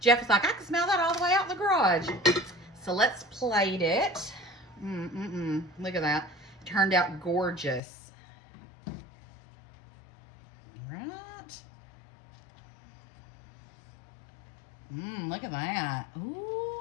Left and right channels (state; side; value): drops out; right; at 7.8 s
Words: Jeff was like, I can smell that all the way out in the garage. So let's plate it. Look at that. It turned out gorgeous. All right. Look at that. Ooh.